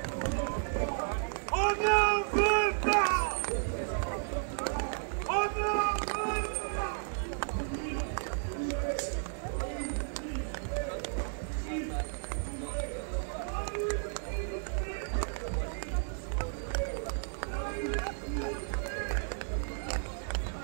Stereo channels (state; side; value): silent; left; 56 dB below the other